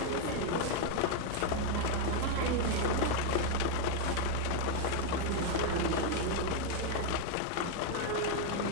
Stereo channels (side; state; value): both; different; correlation 0.01